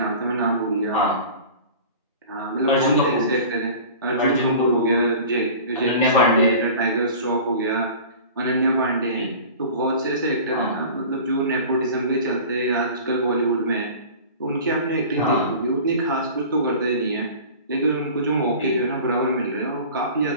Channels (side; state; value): both; inverted; correlation -0.40